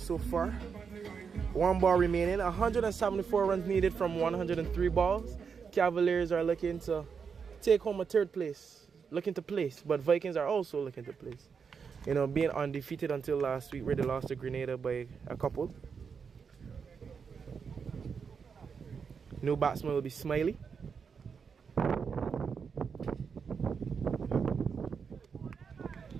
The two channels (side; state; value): left; quieter; 6.1 dB